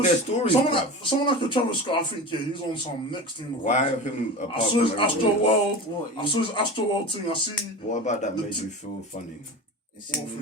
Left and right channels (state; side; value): normal; both; correlation 0.30